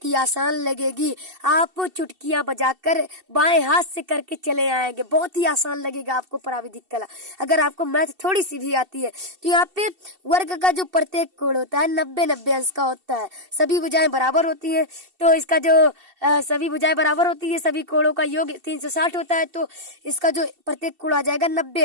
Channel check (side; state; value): left; late; 2.7 ms